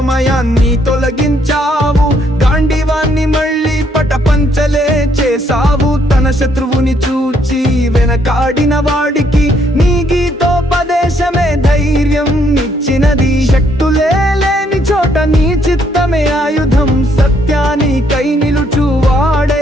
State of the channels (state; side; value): normal; both; correlation 0.70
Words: తొలగించావు, గాంధీవాన్ని మళ్ళీ పటపంచలే చేసావు. తన శత్రువుని చూచి వెనకాడిన వాడికి నీ గీతోపదేశమే ధైర్యం ఇచ్చినది. శక్తులే లేని చోట నీ చిత్తమే ఆయుధం, సత్యానికై